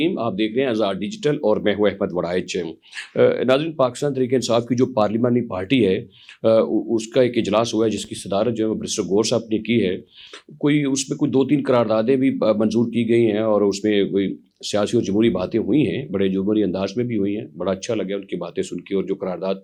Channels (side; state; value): both; identical; correlation 1.00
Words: आप देख रहे हैं आज़ाद डिजिटल और मैं हूं अहमद वड़ाइच। नाज़रीन, पाकिस्तान तहरीक इंसाफ की जो पार्लिमानी पार्टी है, उसका एक इजलास हुआ है जिसकी सदारत जो है वो बैरिस्टर गौर साहब ने की है। कोई उसमें कोई 2-3 करारदादें भी मंजूर की गई हैं और उसमें कोई सियासी और जमहूरी बातें हुई हैं, बड़े जमहूरी अंदाज में भी हुई हैं। बड़ा अच्छा लगा उनकी बातें सुन के। और जो करारदाद